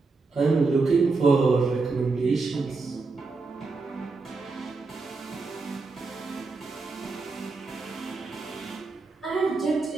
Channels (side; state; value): left; quieter; 4.0 dB